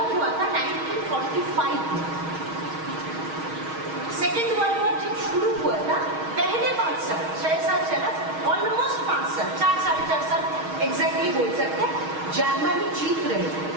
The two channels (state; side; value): late; left; 6.4 ms